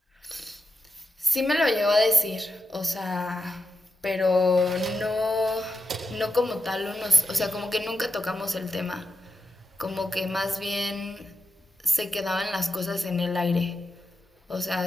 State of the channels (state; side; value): normal; both; correlation 0.88